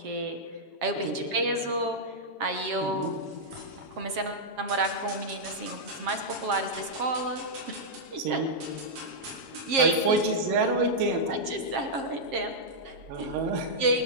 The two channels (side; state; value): left; late; 7.4 ms